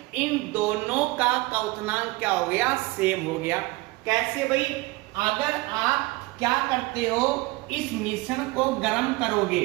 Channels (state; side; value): quieter; left; 22.2 dB